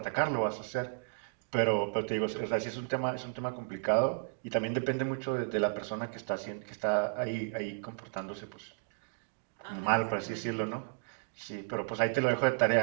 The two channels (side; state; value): left; silent; digital silence